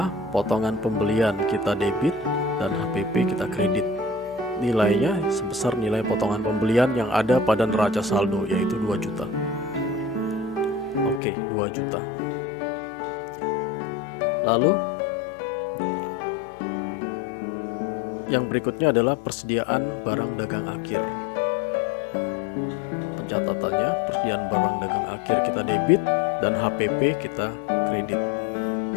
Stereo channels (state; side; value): drops out; right; at 11.2 s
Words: potongan pembelian kita debit dan HPP kita kredit. Nilainya sebesar nilai potongan pembelian yang ada pada neraca saldo, yaitu 2 juta. Oke, 2 juta. Lalu yang berikutnya adalah persediaan barang dagang akhir. Pencatatannya, persediaan barang dagang akhir kita debit dan HPP kita kredit.